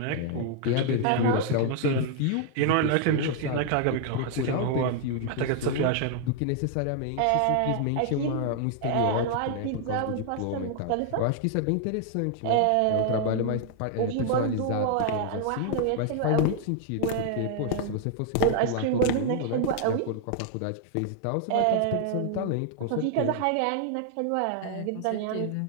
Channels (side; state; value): both; different; correlation 0.00